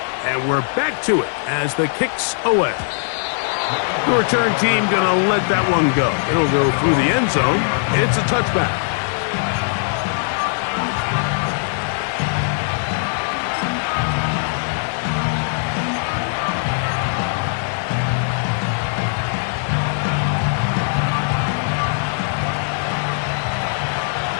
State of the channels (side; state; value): right; silent; digital silence